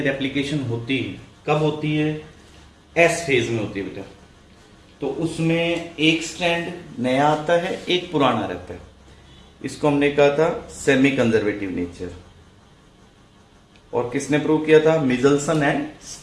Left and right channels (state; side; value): identical; both; correlation 1.00